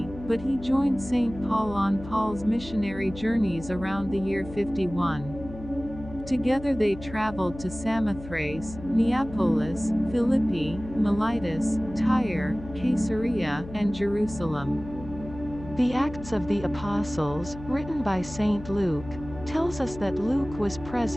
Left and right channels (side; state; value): left; noise; hum, 14 dB below the sound